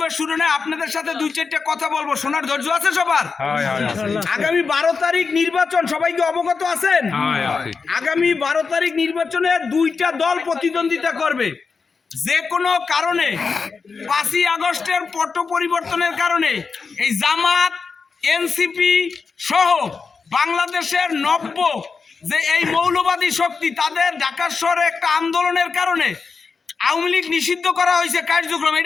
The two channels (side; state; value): right; quieter; 5.0 dB